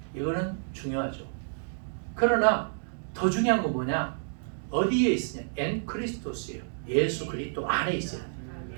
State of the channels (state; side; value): silent; left; digital silence